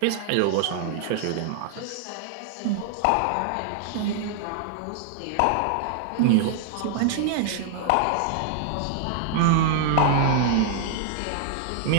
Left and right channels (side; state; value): both; different; correlation -0.01